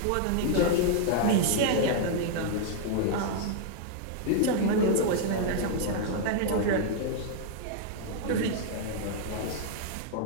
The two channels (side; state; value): both; different; correlation -0.01